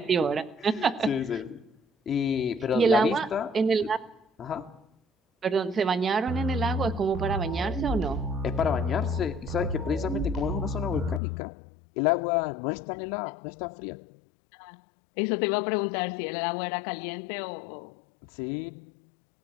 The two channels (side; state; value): right; drops out; at 11.2 s